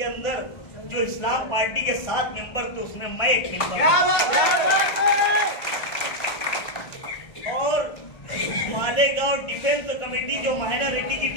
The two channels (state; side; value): late; right; 1.5 ms